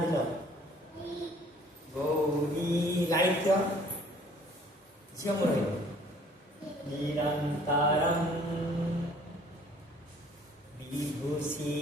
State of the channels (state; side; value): normal; both; correlation 0.55